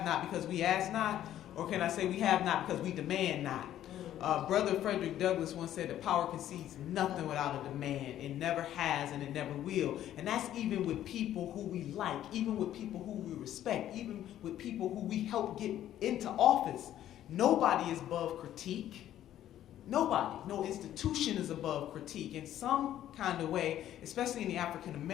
not because we ask not, or can I say we have not because we demand not? Brother Frederick Douglass once said that power concedes nothing without a demand. It never has and it never will. And that's even with people who we like, even with people who we respect, even with people who we help get into office. Nobody is above critique. Nobody, no institution is above critique in some kind of way, especially in the African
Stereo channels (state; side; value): quieter; right; 12.0 dB